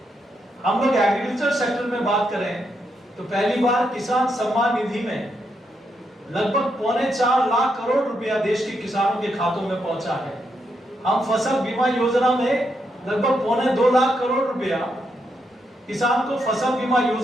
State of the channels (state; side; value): normal; both; correlation 0.80